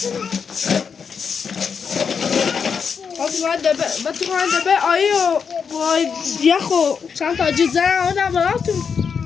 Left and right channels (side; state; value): right; quieter; 6.3 dB